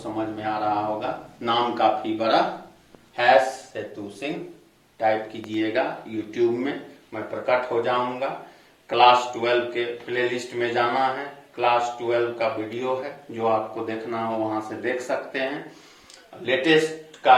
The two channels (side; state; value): both; identical; correlation 1.00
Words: में आ रहा होगा। नाम काफी बड़ा हैश सेतु सिंह टाइप कीजिएगा यूट्यूब में, मैं प्रकट हो जाऊंगा। क्लास 12 के प्लेलिस्ट में जाना है, क्लास 12 का वीडियो है, जो आपको देखना हो वहां से देख सकते हैं। लेटेस्ट